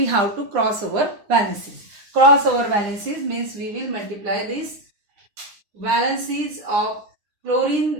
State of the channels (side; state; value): left; late; 9.8 ms